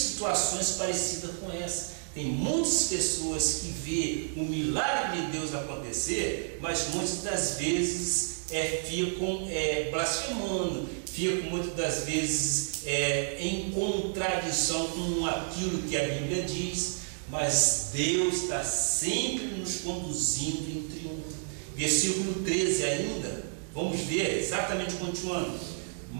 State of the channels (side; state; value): left; silent; digital silence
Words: parecidas com essa. Tem muitas pessoas que vê o milagre de Deus acontecer, mas muitas das vezes ficam blasfemando, ficam muitas das vezes em contradição com aquilo que a Bíblia diz. Mas Deus está sempre nos conduzindo em triunfo. Versículo 13 ainda, vamos ver, exatamente continuando.